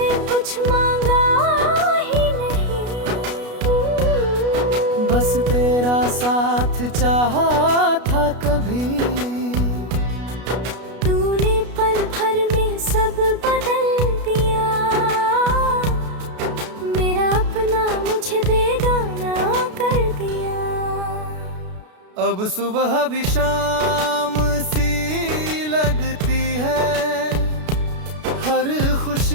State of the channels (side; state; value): left; late; 33 ms